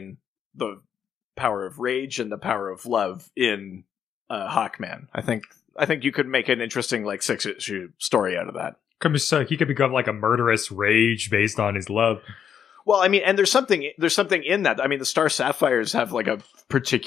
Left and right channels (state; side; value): quieter; right; 8.3 dB